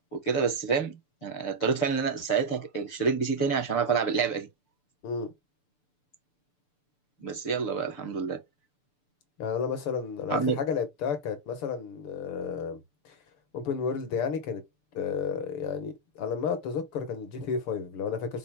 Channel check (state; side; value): late; right; 6.8 ms